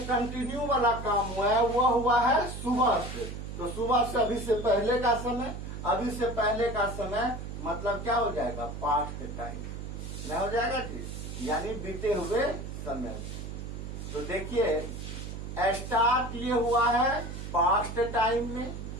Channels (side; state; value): right; noise; hum, 8 dB below the sound